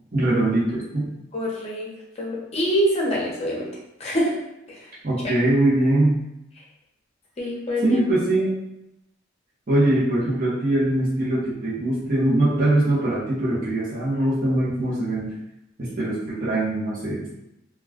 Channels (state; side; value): normal; both; correlation 0.74